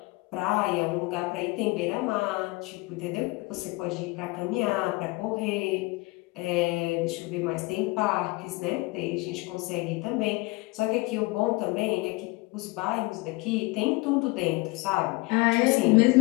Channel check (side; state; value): right; quieter; 24.3 dB